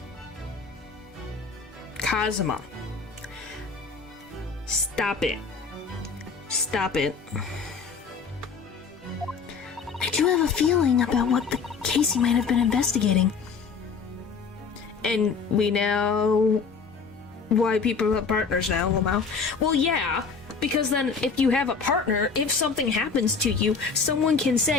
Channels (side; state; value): right; quieter; 5.3 dB